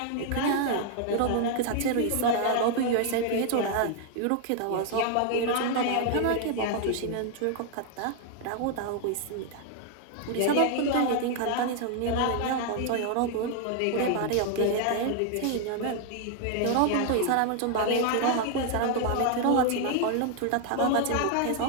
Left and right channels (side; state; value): both; different; correlation 0.00